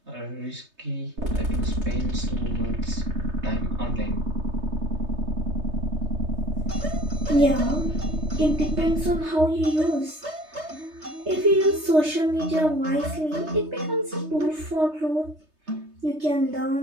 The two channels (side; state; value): left; late; 3.3 ms